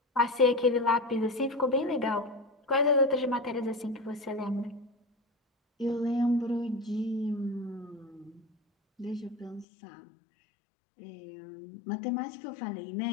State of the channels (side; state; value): right; drops out; at 9.7 s